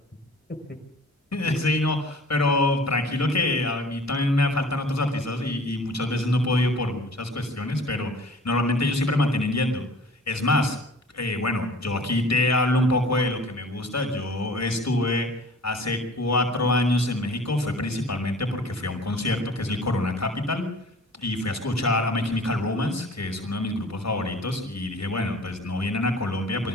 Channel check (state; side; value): normal; both; correlation 0.46